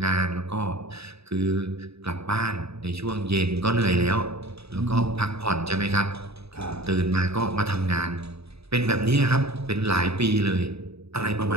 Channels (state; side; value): late; left; 0.78 ms